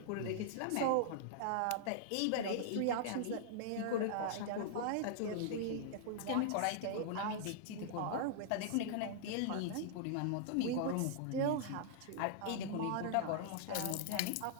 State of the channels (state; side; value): different; both; correlation -0.01